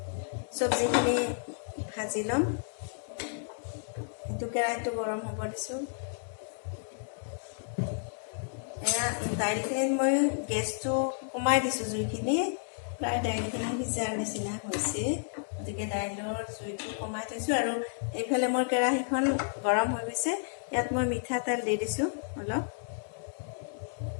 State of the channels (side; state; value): right; silent; digital silence